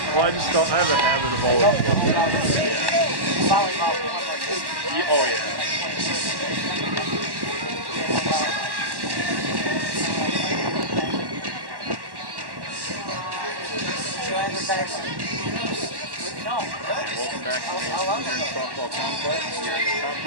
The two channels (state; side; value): late; left; 1.1 ms